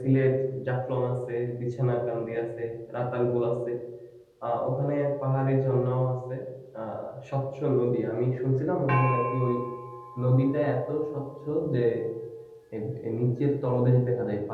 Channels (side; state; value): both; identical; correlation 1.00